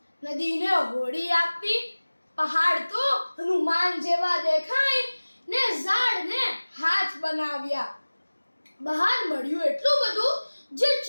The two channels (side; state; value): both; inverted; correlation -1.00